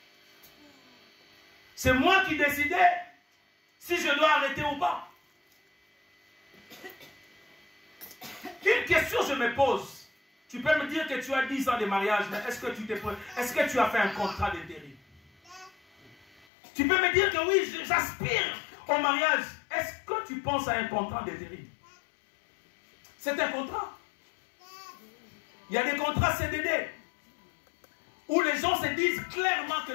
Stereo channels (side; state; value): right; drops out; at 16.4 s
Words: C'est moi qui décidais si je dois arrêter ou pas. Une question je me pose. Tu peux me dire que tu as 10 ans de mariage, mais est-ce que tu as fait un contrat d'intérim? Tu peux me dire que oui, j'aspire au mariage. Est-ce que tu penses à un contrat d'intérim? C'est un contrat. Il y a des contrats CDD où les gens se disent clairement que